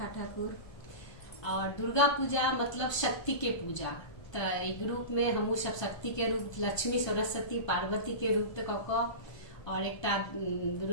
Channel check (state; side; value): late; right; 1.2 ms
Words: ठाकुर। और दुर्गा पूजा मतलब शक्ति के पूजा। तो ग्रुप में हमू सब शक्ति के रूप, लक्ष्मी सरस्वती पार्वती के रूप तक और एकटा